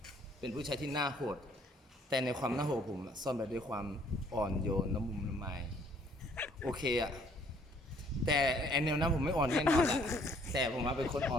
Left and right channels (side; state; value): both; normal; correlation 0.62